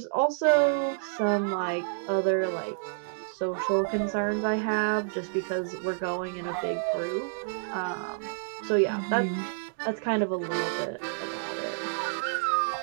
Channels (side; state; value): left; silent; digital silence